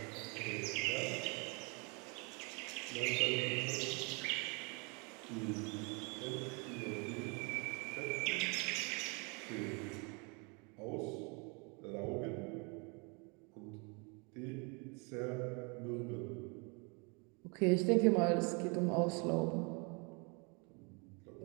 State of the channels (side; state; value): left; quieter; 32.4 dB